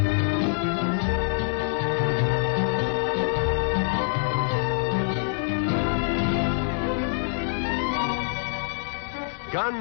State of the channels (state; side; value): silent; right; digital silence